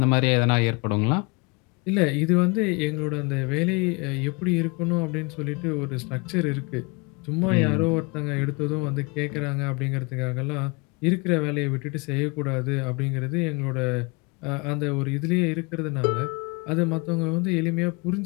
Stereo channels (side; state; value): right; quieter; 29.0 dB